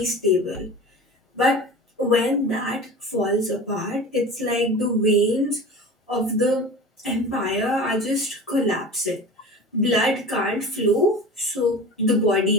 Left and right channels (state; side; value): normal; both; correlation 0.35